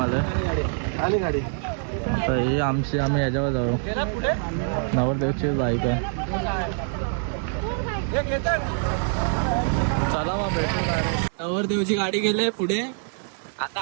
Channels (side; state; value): left; silent; 57 dB below the other